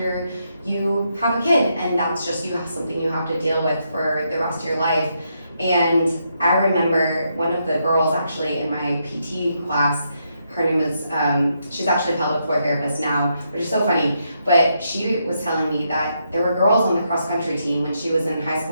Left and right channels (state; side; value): inverted; both; correlation -0.79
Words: you have a kid, and that's just something you have to deal with for the rest of your life. And I remember one of the girls actually in my PT class, her name is, she's actually a pelvic floor therapist now, which is so funny, but she was telling me that there were girls on the cross country team when she was in high